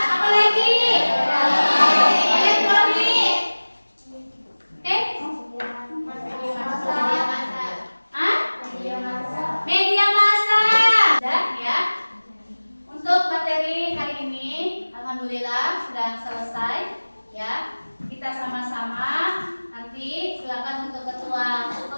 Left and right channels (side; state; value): both; inverted; correlation -1.00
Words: Apa lagi? Elektronik. Oke? Hah? Media massa. Sudah ya. Untuk materi hari ini, alhamdulillah sudah selesai ya. Kita sama-sama nanti silakan untuk ketua